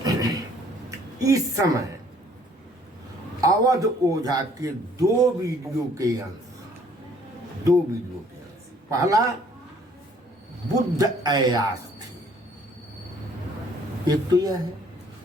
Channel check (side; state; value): both; normal; correlation 0.60